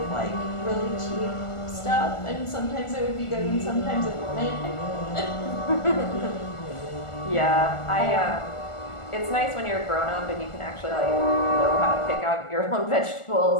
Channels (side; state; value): right; late; 1.4 ms